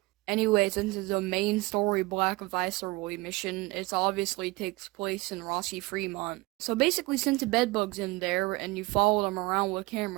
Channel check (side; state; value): left; quieter; 22.9 dB